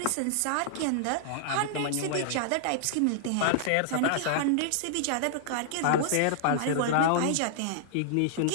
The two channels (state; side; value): different; both; correlation -0.01